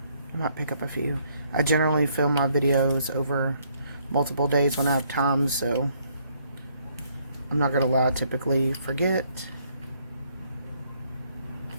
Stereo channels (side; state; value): both; inverted; correlation -0.68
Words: I might pick up a few. I generally film my videos over multiple days when I have time, so I'm not going to lie, I typically forget.